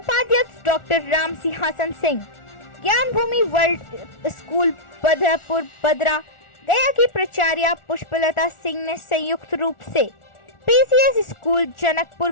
डॉक्टर राम सिंहासन सिंह, ज्ञान भूमि वर्ल्ड स्कूल बदरपुर बदरा गया की प्राचार्य पुष्पलता सिंह ने संयुक्त रूप से PCS स्कूल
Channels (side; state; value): right; late; 1.4 ms